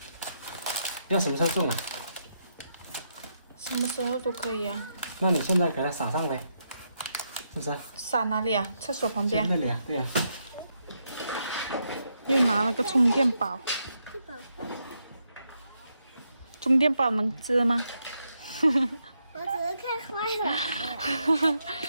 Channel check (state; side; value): inverted; both; correlation -0.81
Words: 要什么时候种啊？什么时候都可以啊。那你现在给它撒上来，是不是？撒哪里啊？厕所旁边。那里啊，对啊。又拿了个充电宝。这宝放。充电宝能织吗？我只是看坏了。